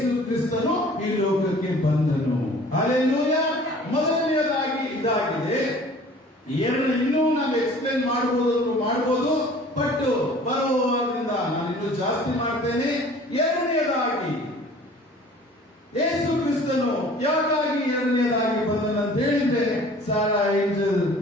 ಕ್ರಿಸ್ತನು ಈ ಲೋಕಕ್ಕೆ ಬಂದನು. ಹಲ್ಲೆಲೂಯಾ. ಮೊದಲನೆಯದಾಗಿ ಇದಾಗಿದೆ. ಇನ್ನೂ ನಾವು ಎಕ್ಸ್ಪ್ಲೇನ್ ಮಾಡಬಹುದು, ಬಟ್ ಬರುವವರಿಂದ ನಾನು ಇನ್ನೂ ಜಾಸ್ತಿ ಮಾಡ್ತೇನೆ. ಎರಡನೆಯದಾಗಿ ಯೇಸು ಕ್ರಿಸ್ತನು ಯಾಕಾಗಿ ಎರಡನೆಯದಾಗಿ ಬಂದನಂತ ಹೇಳಿದ್ರೆ, ಸಾರಾ angel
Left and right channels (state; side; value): normal; both; correlation 0.48